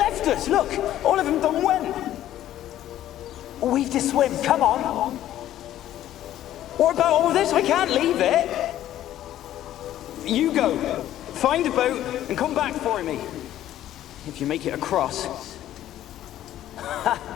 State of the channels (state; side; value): quieter; right; 12.6 dB